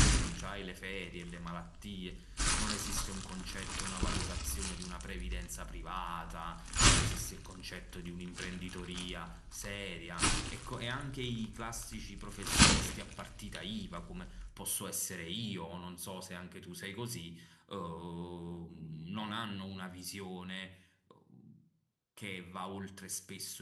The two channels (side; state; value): both; identical; correlation 1.00